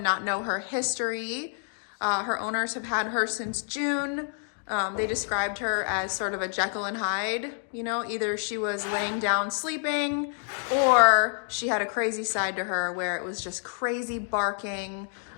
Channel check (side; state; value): right; silent; 59 dB below the other